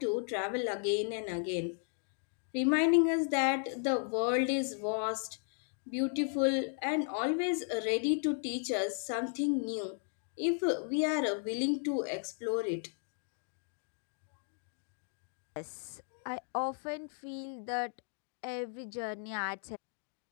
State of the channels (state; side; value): silent; right; 54 dB below the other